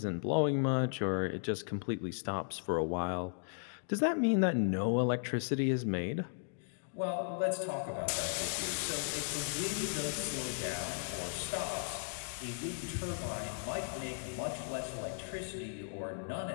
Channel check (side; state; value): right; silent; digital silence